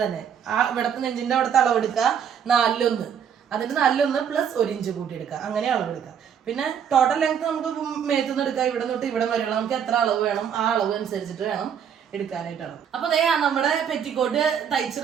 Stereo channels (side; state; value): left; quieter; 8.1 dB